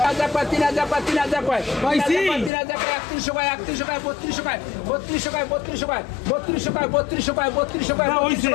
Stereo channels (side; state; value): right; drops out; at 2.5 s